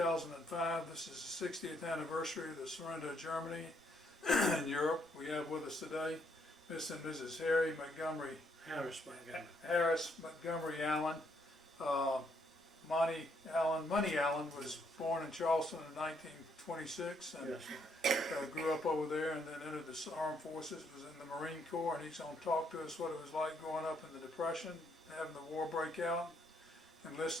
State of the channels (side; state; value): both; normal; correlation 0.72